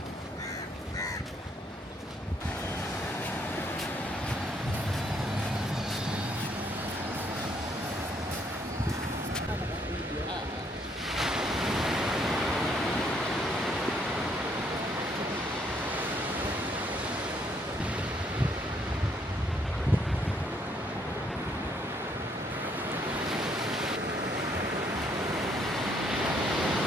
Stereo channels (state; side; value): normal; both; correlation 0.69